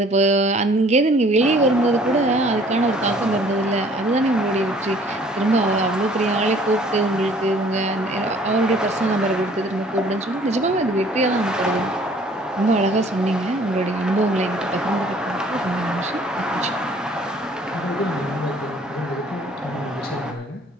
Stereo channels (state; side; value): normal; both; correlation 0.56